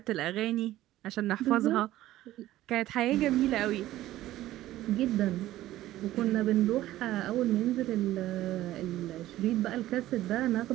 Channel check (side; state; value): left; quieter; 14.9 dB